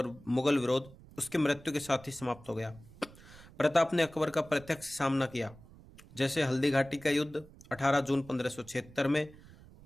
विरोध उसकी मृत्यु के साथ ही समाप्त हो गया। प्रताप ने अकबर का प्रत्यक्ष सामना किया, जैसे हल्दी घाटी का युद्ध 18 जून 1576 में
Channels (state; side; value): noise; right; rumble, 21 dB below the sound